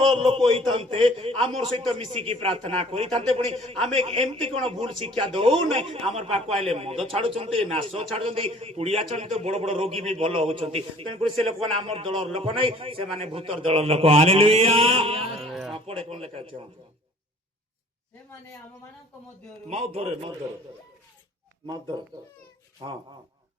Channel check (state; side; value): normal; both; correlation 0.52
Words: लोक होइतांते आमर सहित मिसिकी प्रार्थना करितांते पुणी आमे एमती कोन भूल शिक्षा दउ नै आमर पाको आइले मद छाडुचंती नाश छाडुचंती पुड़िया चंती बड़ बड़ रोगी भी भलो होचंती तेन पर से लोक माने आमर दल लोक नै से माने भूतर दल लोक। हालेलुया आपड़े कोन लेखा छै से माने आम मानक मध्यरु मौत धरे हां